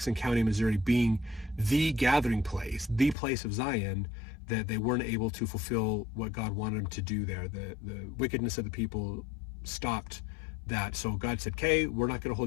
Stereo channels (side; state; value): right; drops out; at 3.2 s